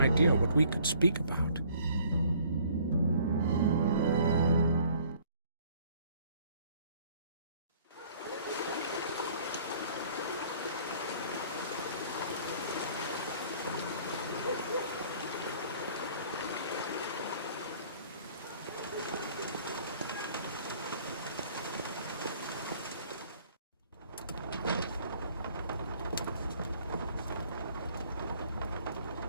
what we could speak about.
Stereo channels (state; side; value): inverted; both; correlation -0.57